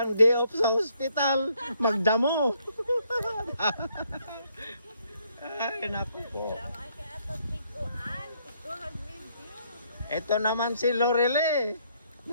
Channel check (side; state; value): both; inverted; correlation -0.70